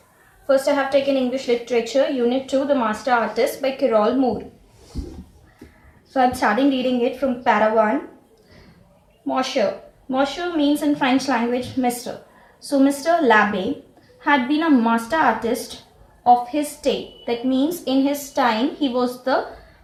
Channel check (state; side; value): identical; both; correlation 1.00